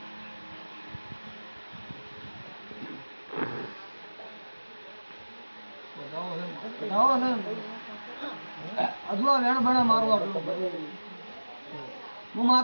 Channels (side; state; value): both; inverted; correlation -1.00